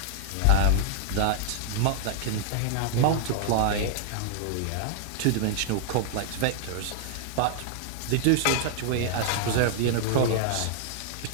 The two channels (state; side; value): different; both; correlation -0.01